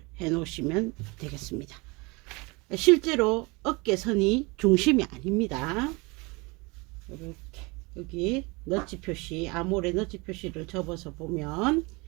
해 놓으시면 되겠습니다. 실제로 어깨선이 중심이 아닙니다. 이렇게 여기 너치 표시, 아몰의 너치 표시를 접어서 보면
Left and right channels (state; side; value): quieter; left; 26.7 dB